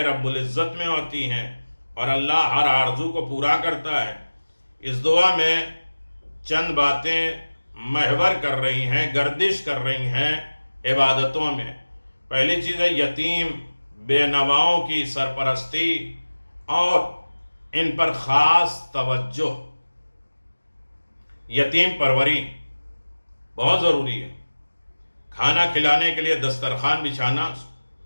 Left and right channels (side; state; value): both; inverted; correlation -1.00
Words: رب العزت میں ہوتی ہیں اور اللہ ہر آرزو کو پورا کرتا ہے۔ اس دعا میں چند باتیں محور کر رہی ہیں، گردش کر رہی ہیں عبادتوں میں۔ پہلی چیز ہے یتیم بے نواؤں کی سرپرستی اور ان پر خاص توجہ۔ یتیم پروری بہت ضروری ہے۔ کھانا کھلانے کے لیے دسترخوان بچھانا